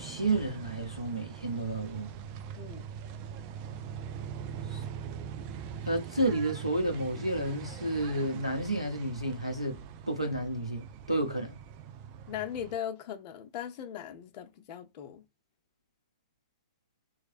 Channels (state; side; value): inverted; both; correlation -0.58